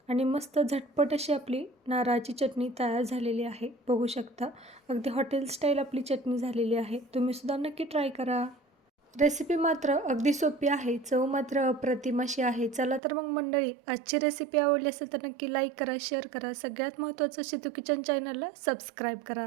आणि मस्त झटपट अशी आपली नारळाची चटणी तयार झालेली आहे, बघू शकता. अगदी हॉटेल स्टाईल आपली चटणी झालेली आहे. तुम्हीसुद्धा नक्की ट्राय करा. रेसिपी मात्र अगदी सोपी आहे, चव मात्र अप्रतिम अशी आहे. चला तर मग मंडळी, आजची रेसिपी आवडली असेल तर नक्की लाईक करा, शेअर करा. सगळ्यात महत्त्वाचं शितू किचन चॅनलला सबस्क्राईब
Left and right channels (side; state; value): left; drops out; at 13.0 s